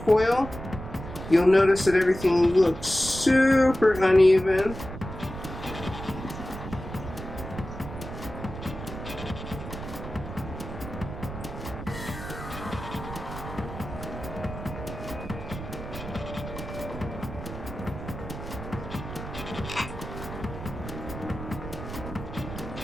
You'll notice that everything looks super uneven.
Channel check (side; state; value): right; noise; rumble, 9 dB below the sound